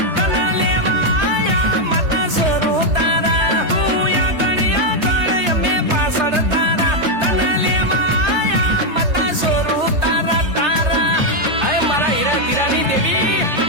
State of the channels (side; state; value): left; late; 3.3 ms